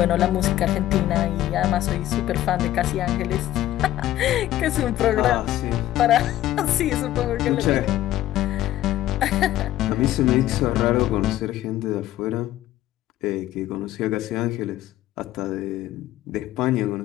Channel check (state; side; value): quieter; right; 13.9 dB